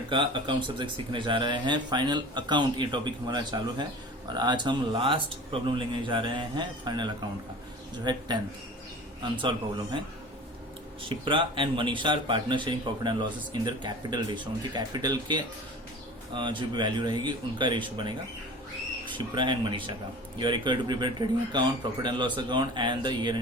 का अकाउंट सब्जेक्ट सीखने जा रहे हैं। फाइनल अकाउंट ये टॉपिक हमारा चालू है और आज हम लास्ट प्रॉब्लम लेने जा रहे हैं फाइनल अकाउंट का, जो है 10th अनसॉल्व प्रॉब्लम है। Shipra and Manisha are partner sharing profit and losses in their capital ratio. उनकी कैपिटल के जो भी वैल्यू रहेगी उनका रेशियो बनेगा शिप्रा एंड मनीषा का। You are required to prepare trading account, profit and loss account and the year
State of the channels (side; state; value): both; normal; correlation 0.39